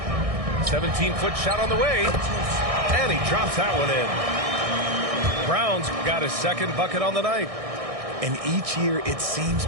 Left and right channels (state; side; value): late; left; 1.6 ms